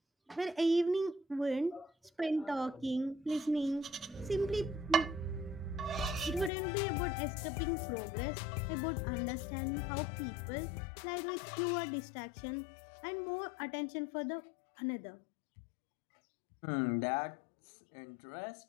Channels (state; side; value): drops out; right; at 6.5 s